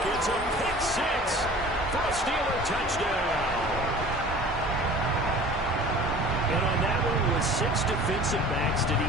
It's a pick 6 for a Steeler touchdown. And on that one, with 6 defensive backs, did he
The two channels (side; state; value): both; normal; correlation 0.44